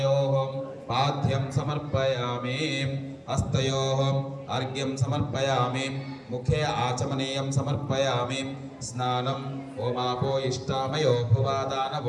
పాద్యం సమర్పయామి. హస్తయోః అర్ఘ్యం సమర్పయామి. ముఖే ఆచమనీయం సమర్పయామి. స్నానం ఓమాపో ఇష్టామయో భువాదాన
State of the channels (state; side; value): identical; both; correlation 1.00